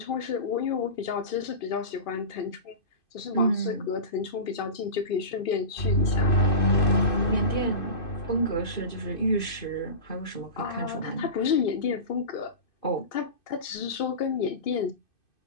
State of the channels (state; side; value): late; right; 2.6 ms